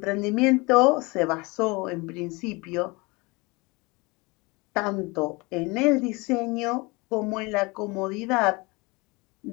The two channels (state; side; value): quieter; right; 25.7 dB